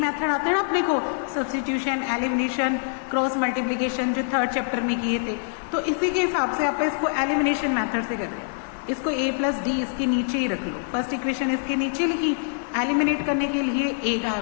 आते हैं ना अपने को, सब्स्टिट्यूशन, एलिमिनेशन, क्रॉस मल्टीप्लिकेशन, जो थर्ड चैप्टर में किए थे, तो इसी के हिसाब से आप इसको एलिमिनेशन मेथड से कर रहे हैं। इसको a प्लस डी इसके नीचे ही रख लो, फर्स्ट इक्वेशन इसके नीचे लिखी, एलिमिनेट करने के लिए a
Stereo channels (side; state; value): right; silent; digital silence